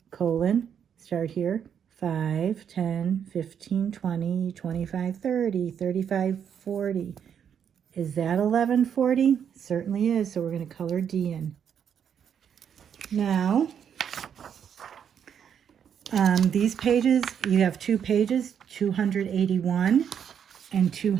Colon. Start here. 5, 10, 15, 20, 25, 30, 35, 40. Is that 11:40? Certainly is, so we're going to color D in. Now, these pages, you have 2 pages, 281 and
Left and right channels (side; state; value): left; quieter; 8.2 dB